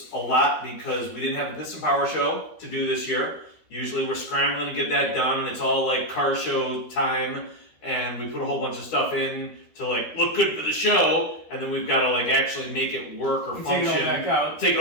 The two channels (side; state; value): right; late; 13 ms